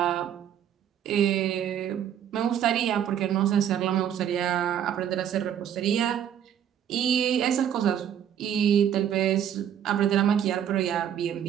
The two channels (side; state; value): left; quieter; 9.6 dB